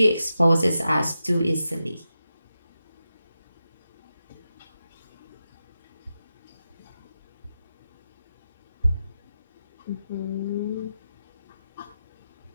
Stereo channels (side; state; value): both; inverted; correlation -0.89